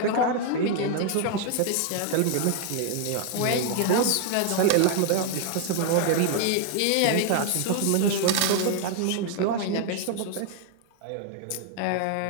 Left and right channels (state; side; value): different; both; correlation 0.00